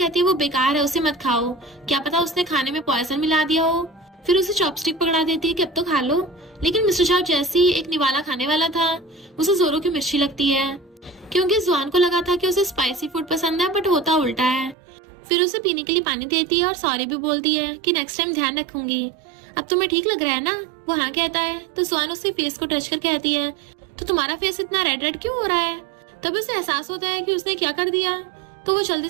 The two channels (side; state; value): left; drops out; at 14.8 s